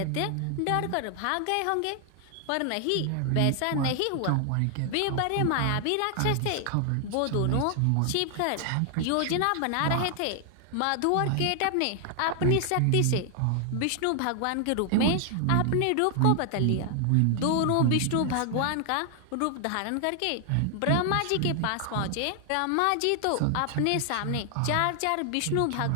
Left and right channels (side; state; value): both; different; correlation 0.00